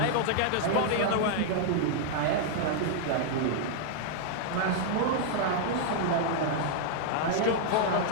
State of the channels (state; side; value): different; both; correlation -0.01